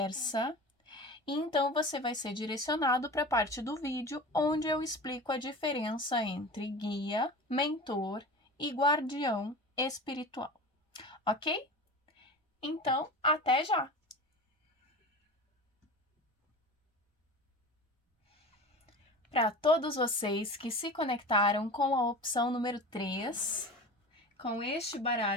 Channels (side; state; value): both; normal; correlation 0.33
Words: e então você vai ser direcionado para a parte do vídeo onde eu explico a diferença entre guia, mentor e guardião espiritual, ok? Então, até já! Para todos vocês que se conectaram com a opção número 3, com este